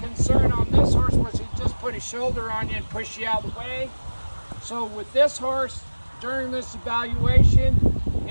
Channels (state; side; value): inverted; both; correlation -1.00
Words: concern on this horse was he just put his shoulder on you and push you out of the way. So with this horse, during this evaluation,